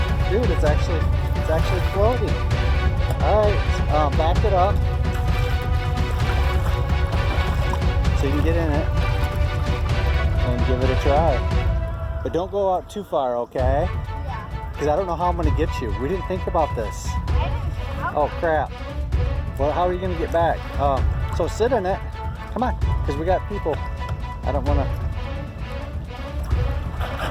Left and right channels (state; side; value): identical; both; correlation 1.00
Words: Dude, it's actually floating. Alright, back it up so you can get in it and give it a try. But don't go out too far, okay? Yeah. Because I don't know how I'm going to get you. We didn't think about this. Oh crap. Well, how are you going to get back? So sit in it. Come on, because we got people. I don't want to.